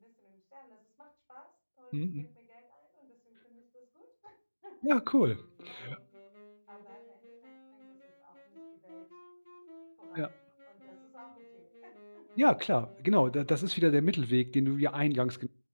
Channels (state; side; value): inverted; both; correlation -1.00